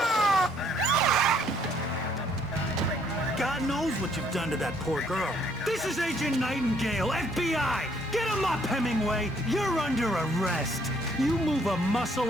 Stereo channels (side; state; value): both; normal; correlation 0.65